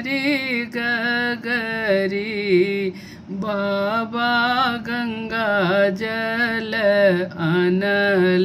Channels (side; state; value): both; identical; correlation 1.00